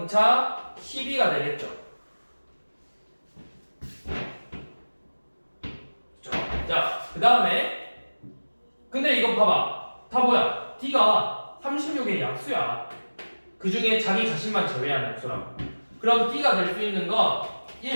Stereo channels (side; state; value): both; inverted; correlation -1.00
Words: 12가 되겠죠. 자, 그 다음에 근데 이거 봐봐. 다 뭐야? d가 36의 약수야. 그 중에 자기 자신만 제외한 약수라고. 그럼 d가 될 수 있는 건